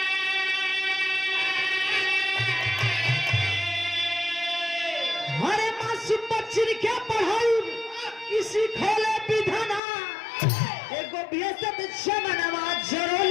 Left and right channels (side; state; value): right; drops out; at 9.8 s